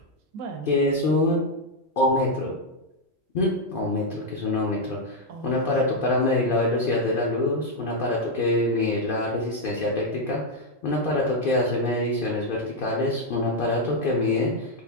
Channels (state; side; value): normal; both; correlation 0.00